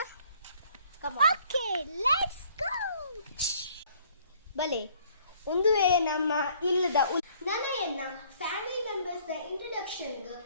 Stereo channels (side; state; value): both; inverted; correlation -0.60